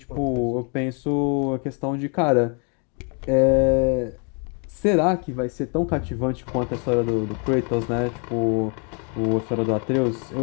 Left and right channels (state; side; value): quieter; right; 37.1 dB